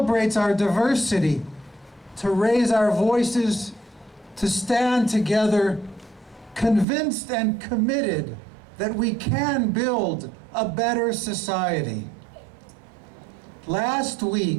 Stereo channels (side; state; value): left; drops out; at 6.9 s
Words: our diversity, to raise our voices, to stand together, convinced and committed that we can build a better society. Last